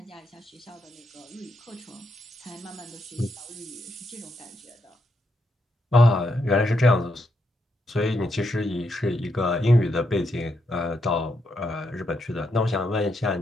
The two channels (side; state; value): both; normal; correlation 0.80